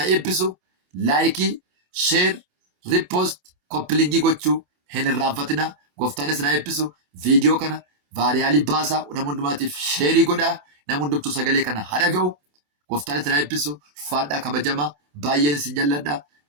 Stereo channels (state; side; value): late; left; 27 ms